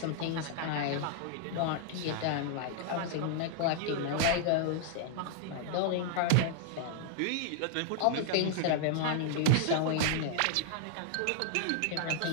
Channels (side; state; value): both; different; correlation -0.01